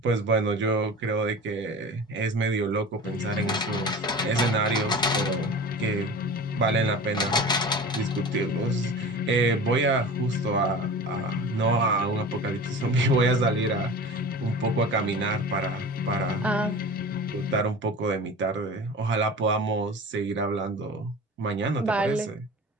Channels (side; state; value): both; normal; correlation 0.36